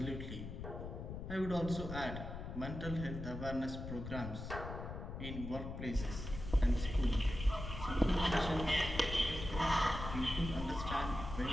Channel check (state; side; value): noise; left; rumble, 7 dB below the sound